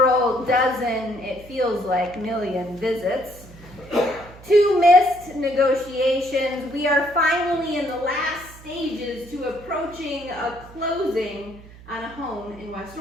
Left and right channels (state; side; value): noise; right; hum, 20 dB below the sound